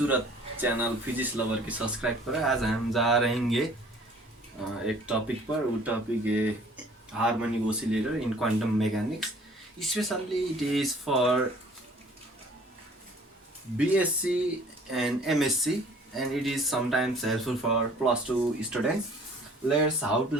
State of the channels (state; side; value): normal; both; correlation 0.53